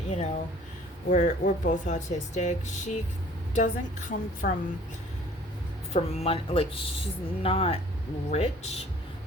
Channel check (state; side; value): normal; both; correlation 0.52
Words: know, we're both autistic. She doesn't come from money, like, she's not rich,